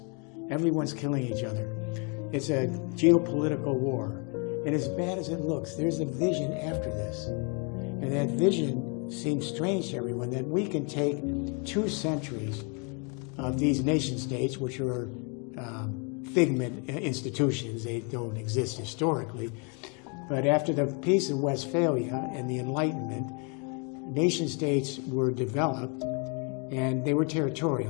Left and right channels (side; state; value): right; quieter; 35.4 dB